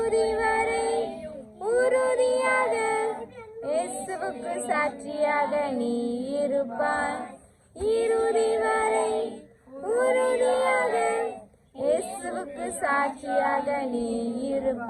வரை உறுதியாக இயேசுவுக்கு சாட்சியாக நீ இருப்பாய் இறுதி வரை உறுதியாக இயேசுவுக்கு சாட்சியாக நீ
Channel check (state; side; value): identical; both; correlation 1.00